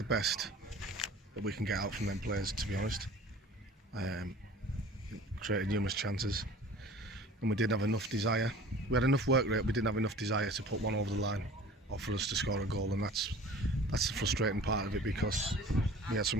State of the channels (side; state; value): both; normal; correlation 0.44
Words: best that we can get out from them players, to be honest. Created numerous chances, and we didn't have enough desire. We had enough work rate, we didn't have enough desire to put one over the line or for us to score a goal, and that's the frustrating part of it, because we had